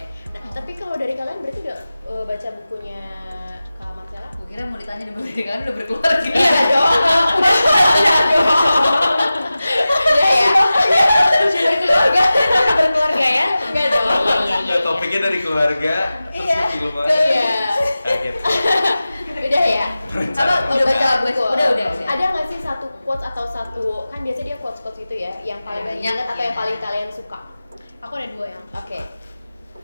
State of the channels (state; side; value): inverted; both; correlation -0.95